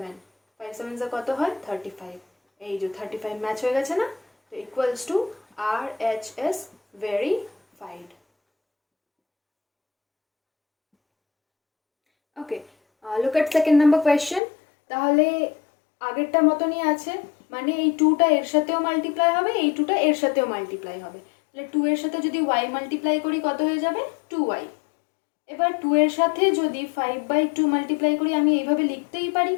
5 7 যা কত হয় 35, এই যে 35 ম্যাচ হয়ে গেছে না, তো equals to RHS verified। Okay, look at second number question, তাহলে আগেরটা মতনই আছে, মানে এই 2টা এর সাথেও মাল্টিপ্লাই হবে, এই 2টা এর সাথেও মাল্টিপ্লাই হবে, তাহলে 2 এর সাথে যদি y মাল্টিপ্লাই করি কত হয়ে যাবে 2y। এবার 2 এর সাথে যদি 5/2 মাল্টিপ্লাই করি আমি এইভাবে লিখতেই পারি,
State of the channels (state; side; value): drops out; right; at 14.4 s